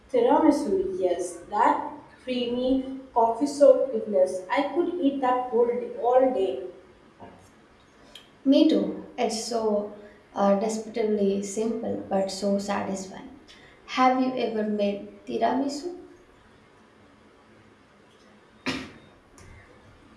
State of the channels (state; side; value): identical; both; correlation 1.00